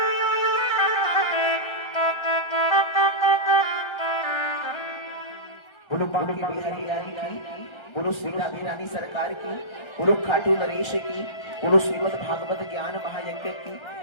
बोलो बांके बिहारी रानी की, बोलो श्री राधे रानी सरकार की, बोलो खाटू नरेश की, बोलो श्रीमद् भागवत ज्ञान महायज्ञ की।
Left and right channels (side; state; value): right; late; 1.3 ms